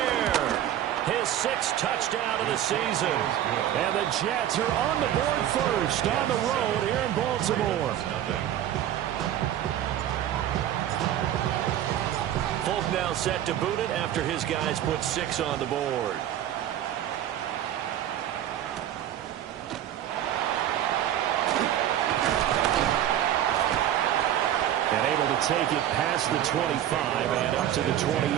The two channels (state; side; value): quieter; left; 11.5 dB